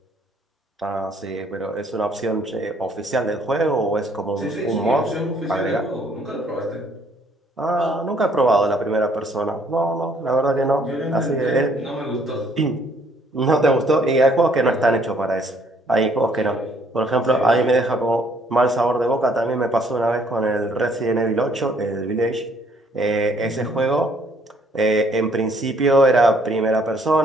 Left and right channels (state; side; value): normal; both; correlation 0.64